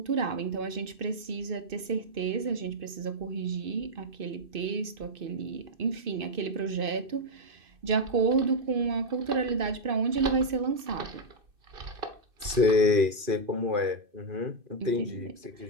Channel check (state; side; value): late; left; 2.5 ms